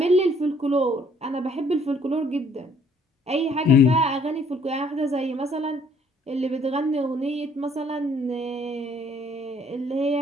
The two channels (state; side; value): normal; both; correlation 0.62